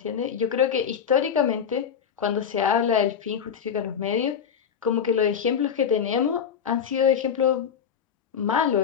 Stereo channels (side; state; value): right; quieter; 7.7 dB